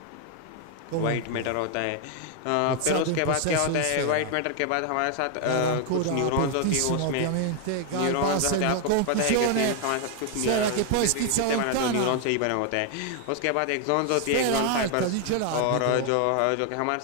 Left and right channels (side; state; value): both; different; correlation 0.00